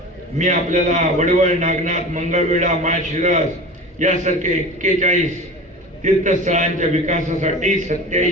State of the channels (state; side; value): normal; both; correlation 0.35